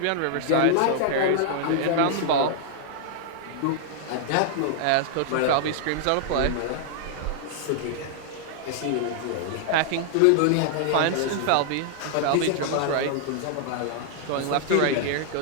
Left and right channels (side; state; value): both; different; correlation -0.01